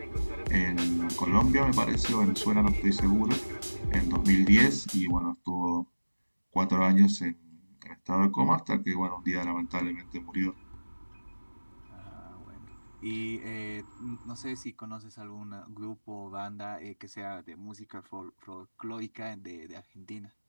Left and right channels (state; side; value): inverted; both; correlation -1.00